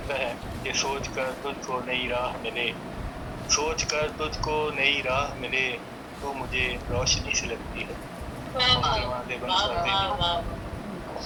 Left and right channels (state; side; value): identical; both; correlation 1.00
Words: है कि सोच कर तुझको नई राह मिले, सोच कर तुझको नई राह मिले, तो मुझे रोशनी से लगती है। मोहतरमा देवबंद साहब